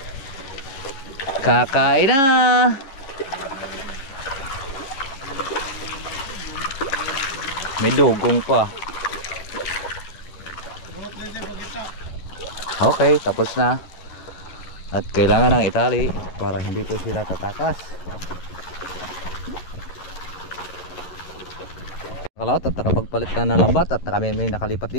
Kakain na. May dugong pa. Okay, tapos na. At kailangan ng itali para hindi po sila tatakas. Kalot at nakapagpalit na ng lambat at kami may nakalipat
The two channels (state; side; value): late; right; 11 ms